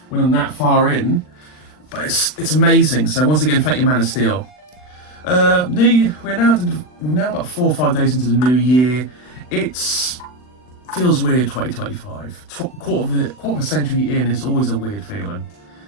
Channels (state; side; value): late; right; 39 ms